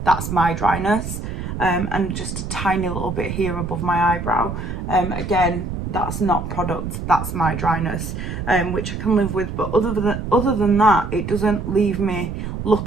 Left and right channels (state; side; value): noise; right; rumble, 6 dB below the sound